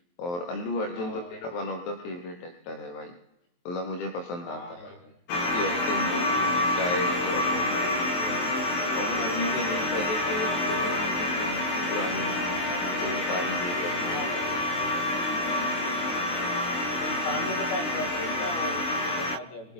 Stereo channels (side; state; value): right; late; 23 ms